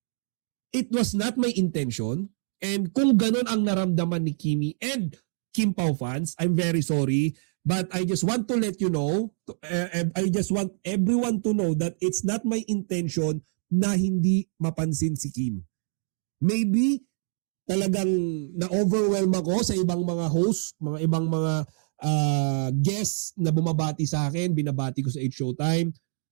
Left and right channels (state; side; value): silent; left; digital silence